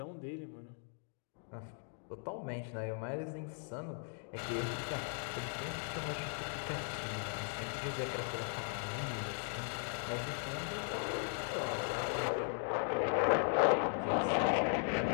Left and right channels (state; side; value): silent; right; 52 dB below the other